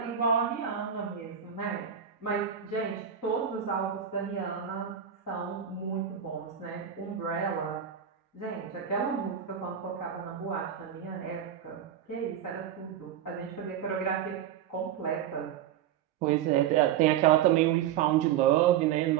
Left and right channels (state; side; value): quieter; left; 9.3 dB